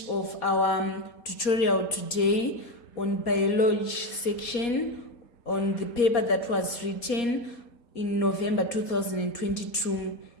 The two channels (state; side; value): late; right; 4.2 ms